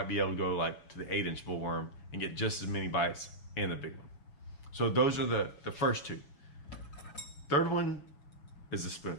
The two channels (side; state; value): right; late; 6.9 ms